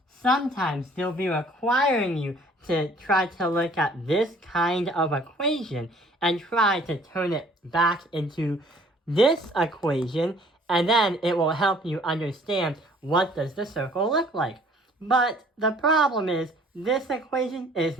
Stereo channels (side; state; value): both; normal; correlation 0.56